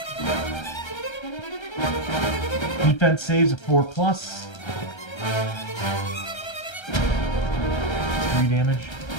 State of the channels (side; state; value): right; late; 1.3 ms